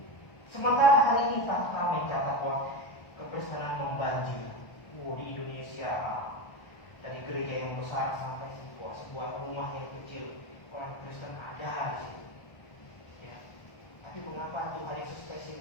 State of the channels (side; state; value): right; late; 1.3 ms